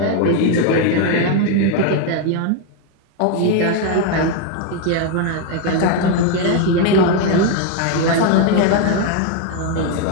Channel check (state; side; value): different; both; correlation 0.01